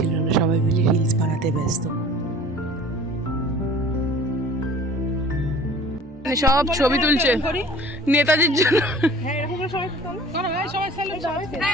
না, সবাই মিলে রিলস বানাতে ব্যস্ত। সব ছবি তুলছে নেতাজির জন্য।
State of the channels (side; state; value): both; normal; correlation 0.46